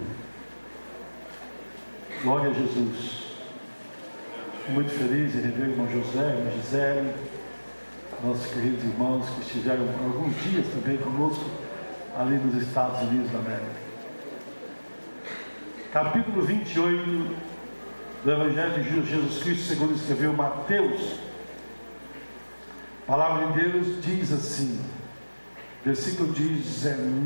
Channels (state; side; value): inverted; both; correlation -1.00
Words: Glória a Jesus. Muito feliz em rever o irmão José, a irmã Gisele, nossos queridos irmãos que estiveram alguns dias também conosco ali nos Estados Unidos da América. Capítulo 28 do Evangelho de Jesus Cristo, segundo escreveu Mateus. A palavra de Deus diz assim, versículo